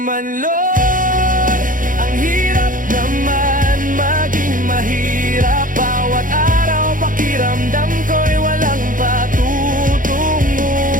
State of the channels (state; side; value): late; left; 0.39 ms